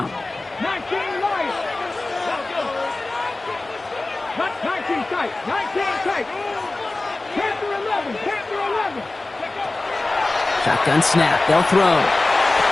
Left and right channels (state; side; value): quieter; right; 3.1 dB